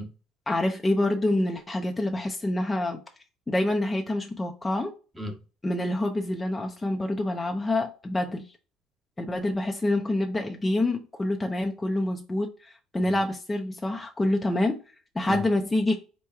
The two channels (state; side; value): normal; both; correlation 0.93